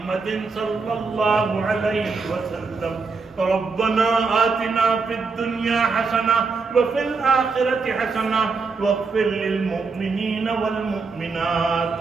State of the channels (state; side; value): quieter; left; 4.5 dB